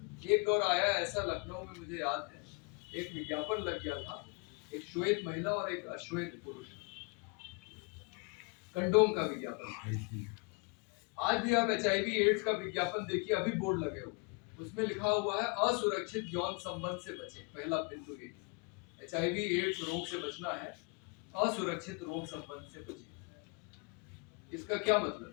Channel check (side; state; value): right; quieter; 29.8 dB